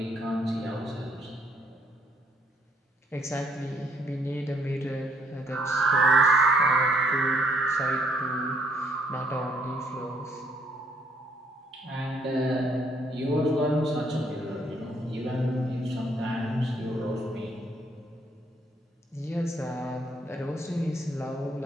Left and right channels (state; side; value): normal; both; correlation 0.68